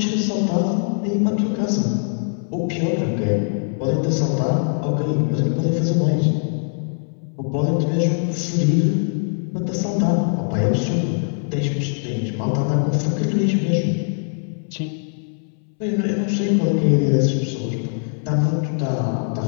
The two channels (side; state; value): right; silent; 65 dB below the other